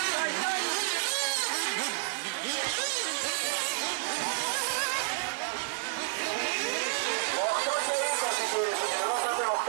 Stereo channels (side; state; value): left; silent; 58 dB below the other